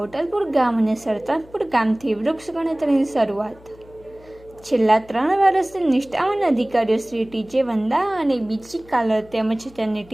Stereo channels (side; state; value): left; noise; hum, 24 dB below the sound